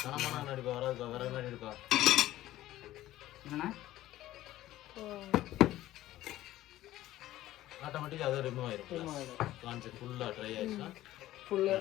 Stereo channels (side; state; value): right; quieter; 14.9 dB